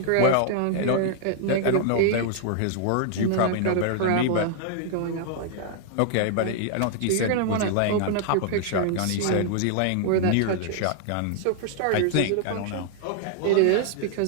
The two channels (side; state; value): both; different; correlation 0.00